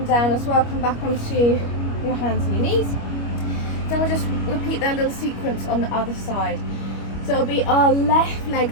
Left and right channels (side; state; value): right; late; 25 ms